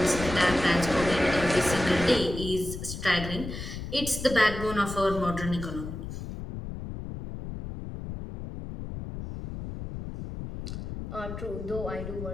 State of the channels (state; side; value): noise; left; rumble, 8 dB below the sound